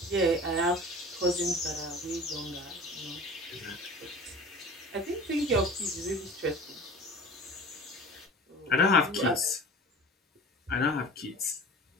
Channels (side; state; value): both; normal; correlation 0.40